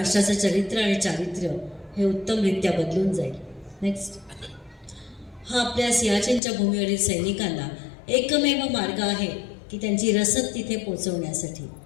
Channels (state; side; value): drops out; right; at 6.4 s